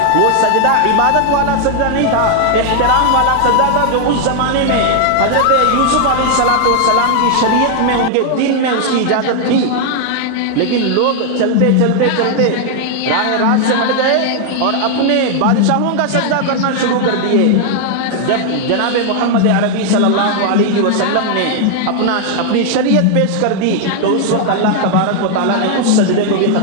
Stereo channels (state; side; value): different; both; correlation 0.00